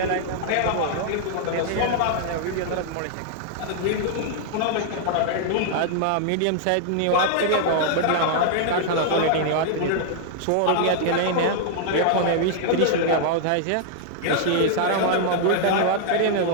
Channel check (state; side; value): different; both; correlation -0.01